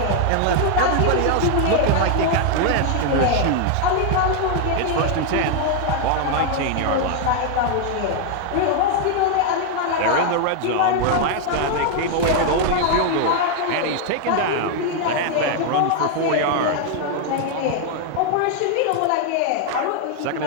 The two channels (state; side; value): different; both; correlation 0.00